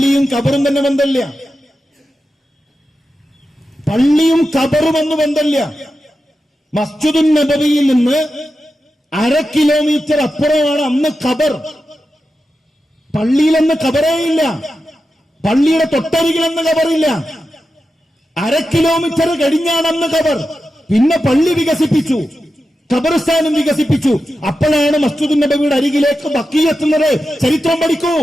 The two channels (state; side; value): normal; both; correlation 0.91